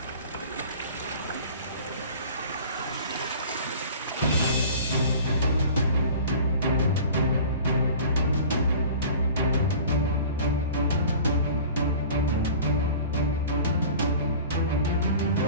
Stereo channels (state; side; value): inverted; both; correlation -0.41